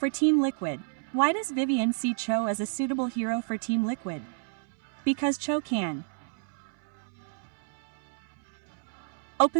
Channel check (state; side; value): silent; left; 58 dB below the other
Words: Team Liquid, why does Vivian see Cho as a suitable hero for Team Liquid? Because Cho can